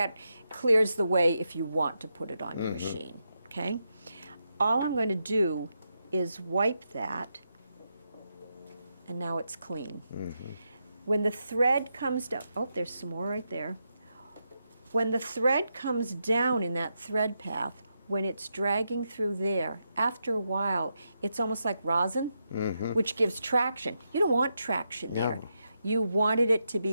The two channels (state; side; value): inverted; both; correlation -0.85